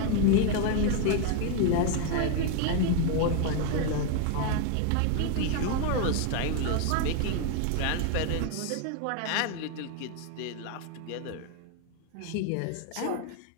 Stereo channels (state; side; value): different; both; correlation 0.01